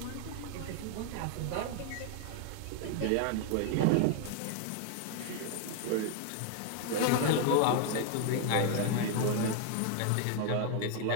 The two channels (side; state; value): both; different; correlation 0.00